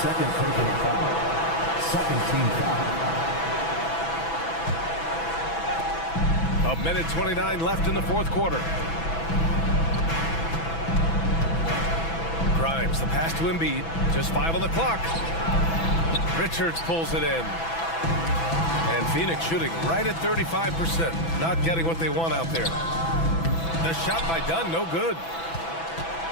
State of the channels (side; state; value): right; late; 6.0 ms